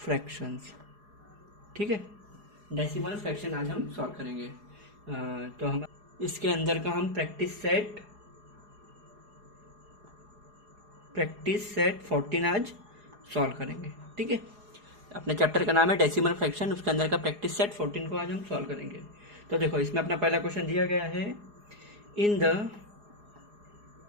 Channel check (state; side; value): late; left; 4.8 ms